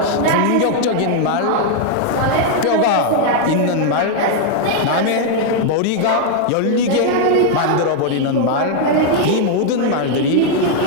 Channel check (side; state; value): both; different; correlation 0.00